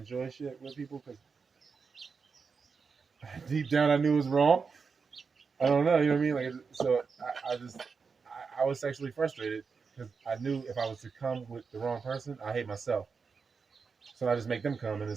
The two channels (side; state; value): left; quieter; 5.3 dB